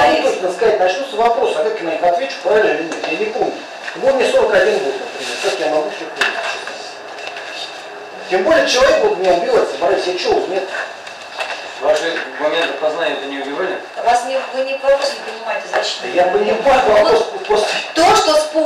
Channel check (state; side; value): identical; both; correlation 1.00